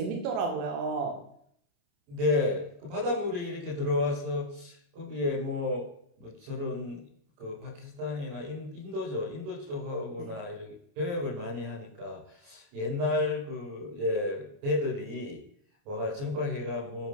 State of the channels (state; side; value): late; left; 29 ms